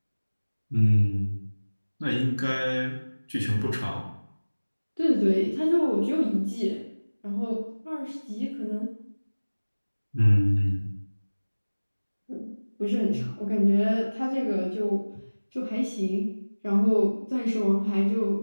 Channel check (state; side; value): inverted; both; correlation -1.00